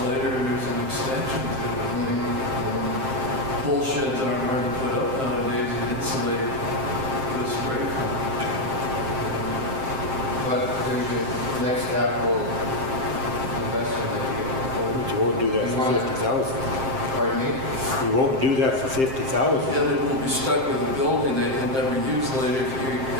later, there's an extension to it. Bull sheds aren't hard to put up nowadays and insulate with spray foam. But there's the next capital investment that you get forward. But you won't do that for 50,000. Pardon me? You won't do that for 50,000. Yeah, they will be stuck with a building they can never use later if you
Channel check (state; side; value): late; left; 7.6 ms